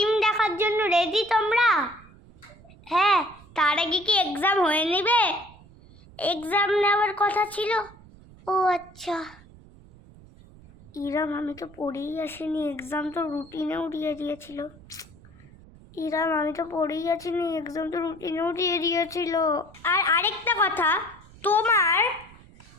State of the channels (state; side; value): noise; right; rumble, 23 dB below the sound